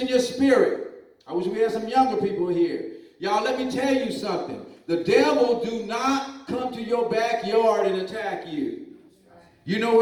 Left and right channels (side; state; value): both; identical; correlation 1.00